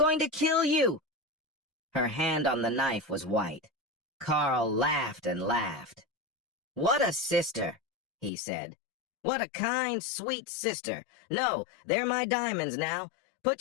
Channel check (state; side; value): drops out; right; at 8.3 s